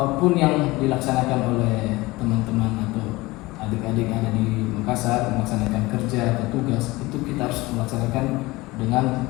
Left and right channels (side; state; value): right; quieter; 21.1 dB